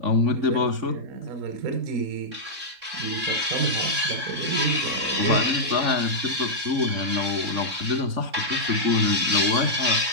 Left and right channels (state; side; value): late; left; 3.6 ms